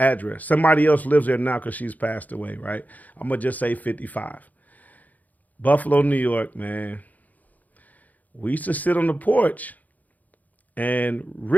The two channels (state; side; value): late; right; 0.079 ms